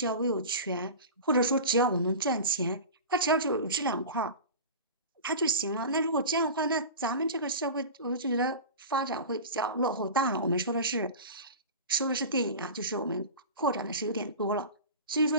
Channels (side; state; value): both; inverted; correlation -0.31